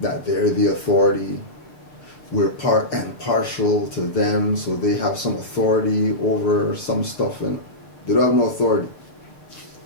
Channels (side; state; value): right; late; 6.5 ms